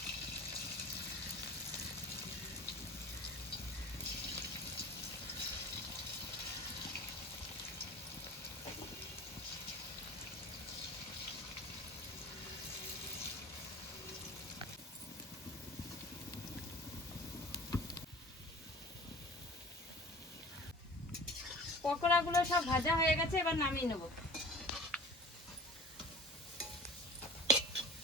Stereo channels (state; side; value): normal; both; correlation 0.42